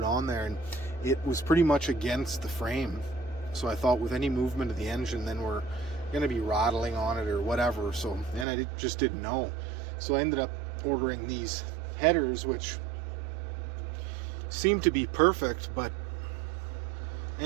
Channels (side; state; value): left; drops out; at 8.5 s